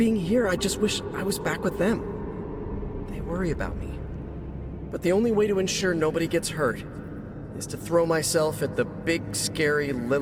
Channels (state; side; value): identical; both; correlation 1.00